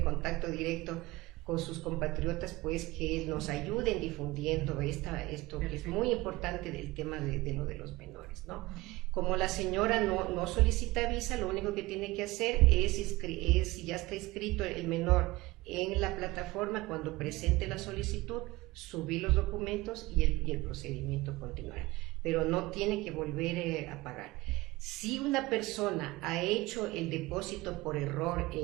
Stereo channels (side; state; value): left; quieter; 20.6 dB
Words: contacto directo con sus compatriotas, pues que nos ayuden difundiendo esto que es muy importante del tema de lo de los menores, ¿no? Como la señora no solicita visa, lo único que tiene que hacer si ya está inscrito el menor en la plataforma, cuando presente la solicitud, subir los documentos y el procedimiento continuará. Pero no tiene que volver a pagar. Si una persona ha hecho el depósito por error